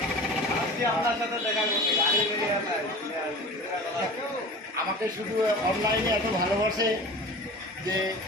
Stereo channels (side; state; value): both; normal; correlation 0.37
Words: আপনার সাথে দেখা করতে আমাকে শুধু অনলাইনে এত ভালোবাসে যে